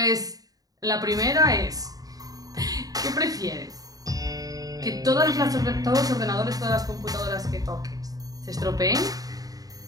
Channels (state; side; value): late; left; 0.18 ms